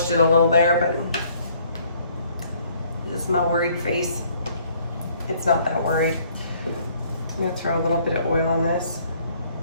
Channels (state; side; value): inverted; both; correlation -0.62